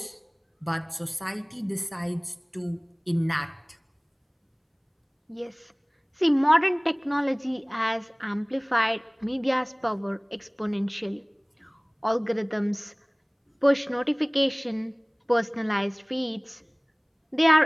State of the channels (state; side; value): identical; both; correlation 1.00